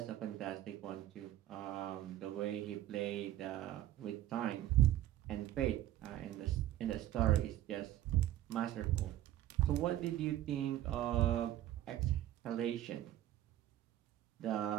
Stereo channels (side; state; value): left; quieter; 13.3 dB